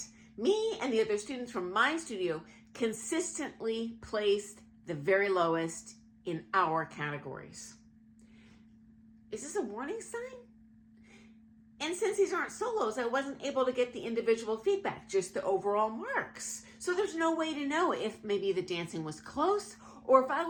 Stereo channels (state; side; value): identical; both; correlation 1.00